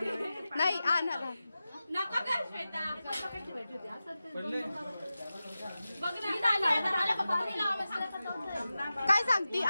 नाही आणा. नका कर श्वेता. पडले. बघ ना पाणी लावा. काय सांगती.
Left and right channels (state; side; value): inverted; both; correlation -0.94